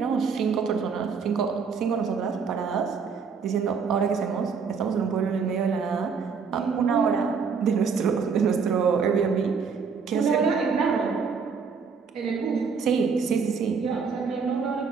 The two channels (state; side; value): quieter; left; 5.6 dB